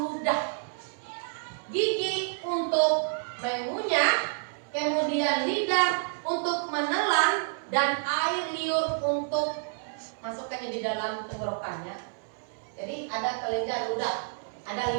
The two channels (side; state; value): left; silent; 59 dB below the other